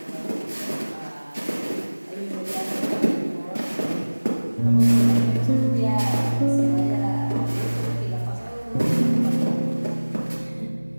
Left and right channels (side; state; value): both; inverted; correlation -1.00